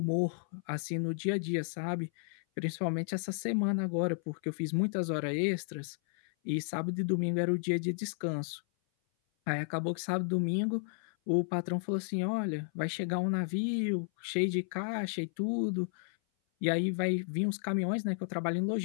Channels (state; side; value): silent; right; 56 dB below the other